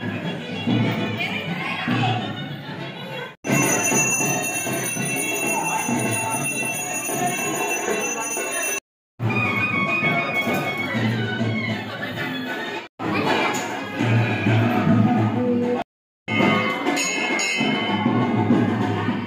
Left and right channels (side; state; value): both; identical; correlation 1.00